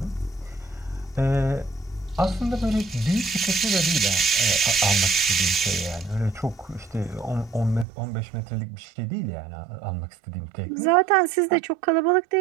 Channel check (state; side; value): drops out; left; at 7.9 s